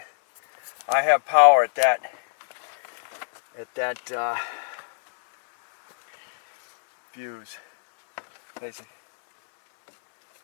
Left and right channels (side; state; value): right; silent; 63 dB below the other